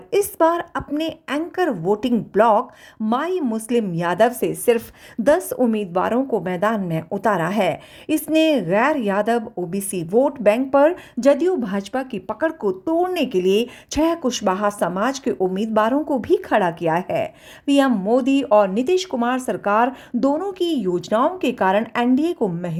इस बार अपने एंकर वोटिंग ब्लॉक माई मुस्लिम यादव से सिर्फ 10 उम्मीदवारों को मैदान में उतारा है। इसने गैर यादव ओबीसी वोट बैंक पर जदयू भाजपा की पकड़ को तोड़ने के लिए 6 कुशवाहा समाज के उम्मीदवारों को भी खड़ा किया है। पीएम मोदी और नीतीश कुमार सरकार दोनों की योजनाओं के कारण एनडीए को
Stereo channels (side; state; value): both; identical; correlation 1.00